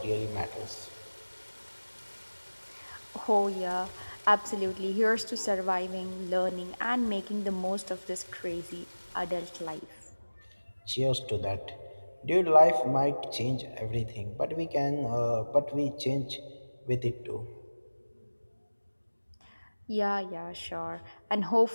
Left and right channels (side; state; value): both; inverted; correlation -1.00